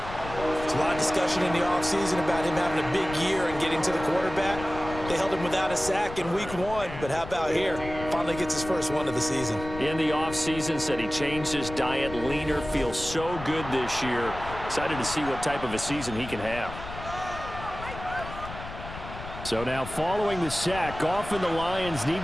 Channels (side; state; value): left; noise; rumble, 11 dB below the sound